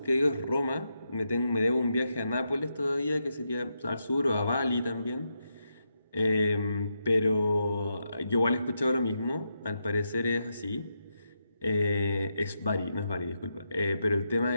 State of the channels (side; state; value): both; inverted; correlation -0.84